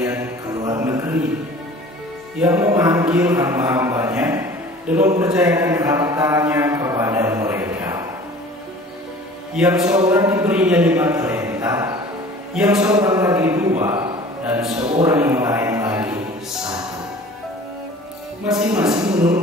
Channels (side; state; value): both; normal; correlation 0.45